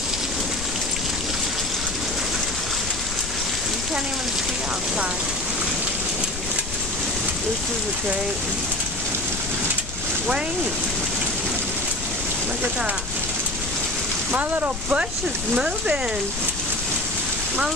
Can't even see outside. This is a great. Wait. Look at that. My little bush is moving. My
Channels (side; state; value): left; noise; rumble, 8 dB below the sound